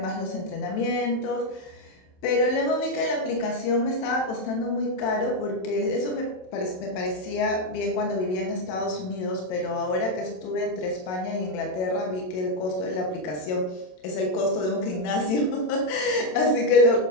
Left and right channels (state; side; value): late; right; 27 ms